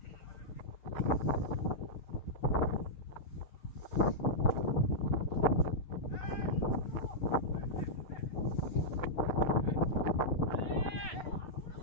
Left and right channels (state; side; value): late; right; 6.6 ms